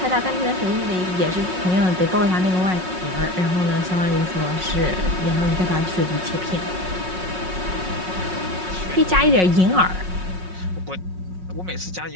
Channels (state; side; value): late; left; 5.4 ms